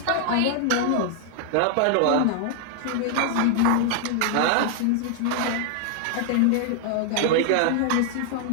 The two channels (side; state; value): both; different; correlation 0.00